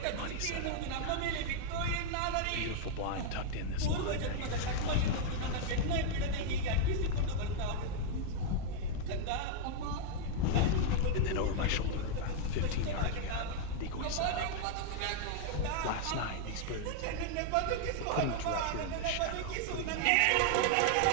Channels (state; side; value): different; both; correlation -0.01